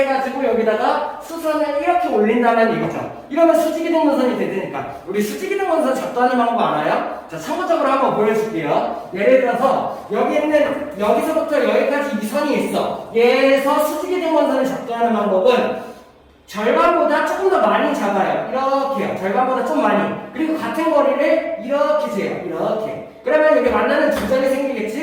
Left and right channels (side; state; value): both; identical; correlation 1.00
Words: 여기다가 수선을 이렇게 올린다는 얘기죠. 이러면 수직이등분선이 되니까. 우리 수직이등분선 작도하는 방법 알아요? 자, 참고적으로 한번 보여줄게요. 예를 들어서 여기 있는 여기서부터 여기까지 이 선이 있어. 얘에서 수직이등분선을 작도하는 방법은 절반보다 조금 더 많이 잡아요. 이렇게요. 절반보다 좀 많이. 그리고 같은 거리를 이렇게 재요. 이렇게. 그러면 여기 만나는 두 점이